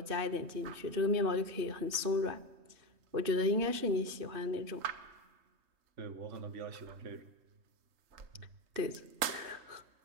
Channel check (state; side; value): late; left; 3.2 ms